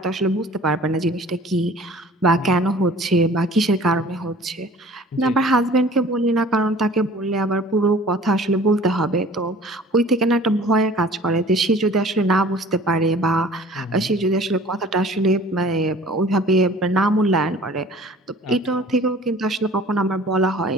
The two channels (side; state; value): both; normal; correlation 0.48